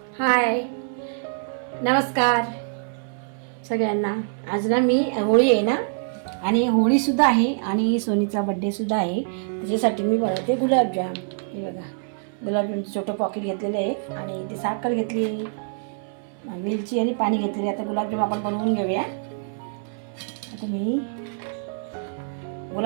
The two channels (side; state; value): left; silent; 61 dB below the other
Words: हाय, नमस्कार सगळ्यांना. आज ना मी होळी आहे ना, आणि होळीसुद्धा आहे आणि सोनीचा बड्डेसुद्धा आहे. त्याच्यासाठी मी बनवते गुलाबजाम. हे बघा, गुलाबजामचं छोटं पॉकेट घेतलेलं आहे आणि ती साखर घेतली, वेलची आणि पाणी घेतलेले. आता गुलाबजाम आपण बनवून घेऊया. आता मी